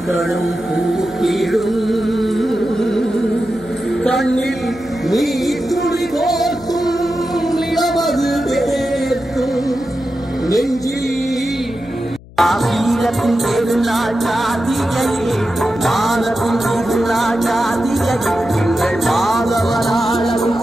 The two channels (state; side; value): noise; left; hum, 21 dB below the sound